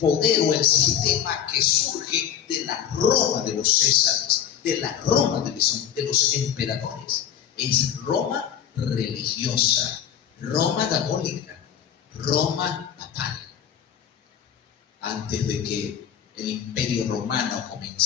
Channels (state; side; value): quieter; right; 9.2 dB